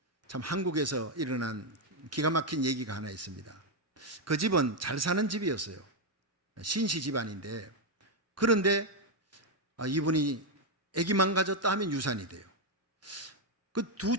참 한국에서 일어난 기가 막힌 얘기가 하나 있습니다. 그 집은 잘 사는 집이었어요. 신시 집안인데, 그런데 이분이 아기만 가졌다 하면 유산이 돼요. 그 두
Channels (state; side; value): normal; both; correlation 0.02